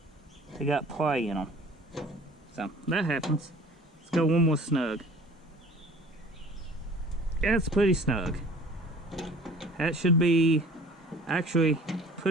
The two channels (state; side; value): normal; both; correlation 0.47